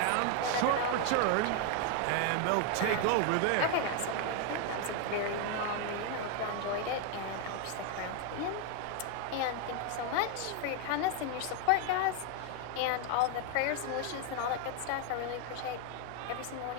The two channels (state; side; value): different; both; correlation 0.01